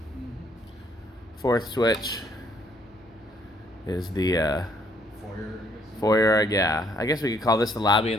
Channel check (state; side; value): normal; both; correlation 0.67